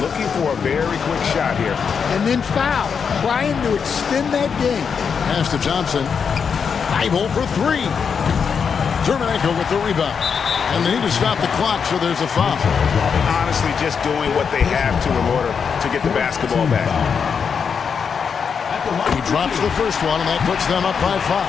looking for a very quick shot here. And then foul, trying to extend that game. Pass to Thompson. 5-0 for 3. Terminenko with the rebound. And they need to stop the clock, so there's a foul. Honestly, just doing what they have to in order to get the basketball back. He drops the first one, and that puts them up by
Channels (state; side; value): quieter; right; 6.4 dB